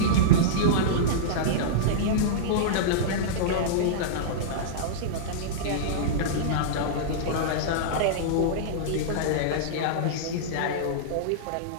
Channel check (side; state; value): both; different; correlation -0.03